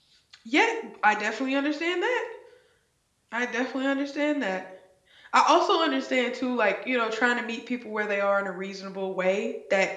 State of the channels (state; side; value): identical; both; correlation 1.00